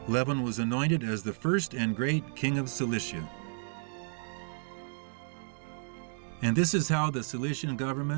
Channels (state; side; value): silent; left; 56 dB below the other